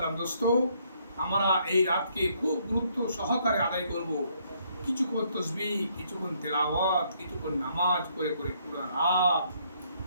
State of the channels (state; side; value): inverted; both; correlation -0.70